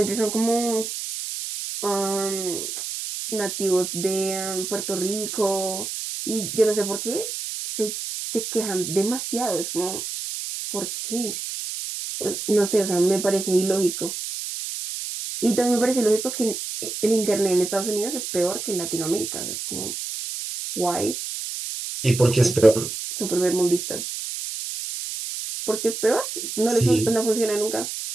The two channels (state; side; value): noise; right; hiss, 6 dB below the sound